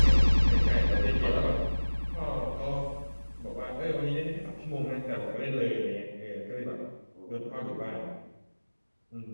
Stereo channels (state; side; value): inverted; both; correlation -1.00